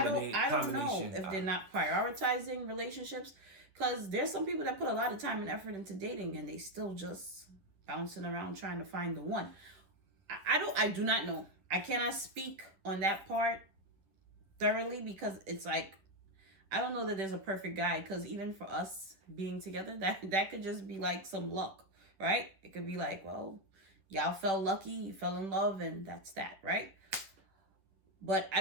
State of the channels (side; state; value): left; late; 10 ms